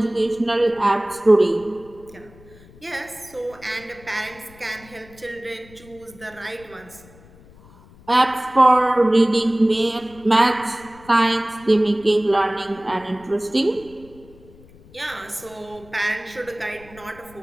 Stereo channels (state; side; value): noise; left; rumble, 24 dB below the sound